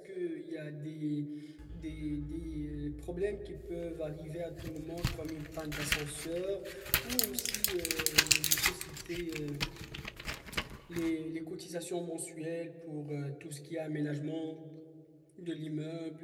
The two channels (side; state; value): both; identical; correlation 1.00